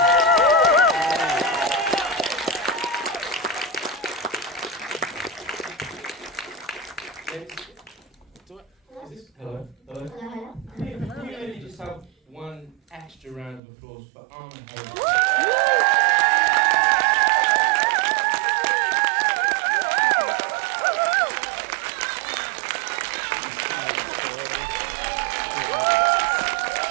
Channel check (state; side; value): drops out; left; at 13.6 s